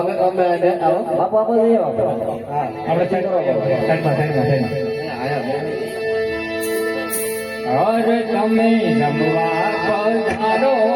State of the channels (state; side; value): identical; both; correlation 1.00